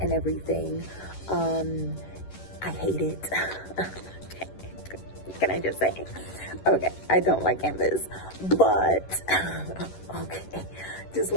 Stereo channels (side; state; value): right; late; 11 ms